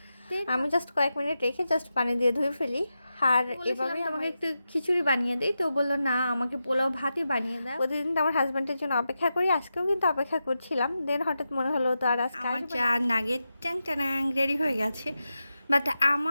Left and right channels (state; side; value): inverted; both; correlation -0.90